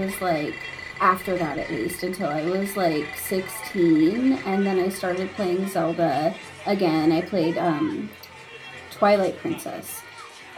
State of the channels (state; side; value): identical; both; correlation 1.00